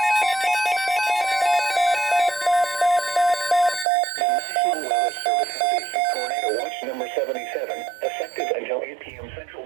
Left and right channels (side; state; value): left; drops out; at 3.9 s